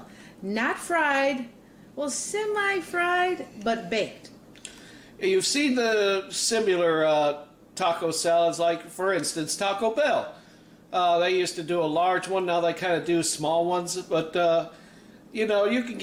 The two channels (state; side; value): identical; both; correlation 1.00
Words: Not fried, well, semi-fried, but baked. You've seen the similar taco salads, like, for instance, Taco Bell. They used to do a large one, now they kind of do small ones, but... you know, you can